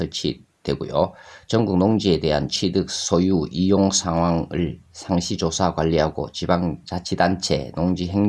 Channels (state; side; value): identical; both; correlation 1.00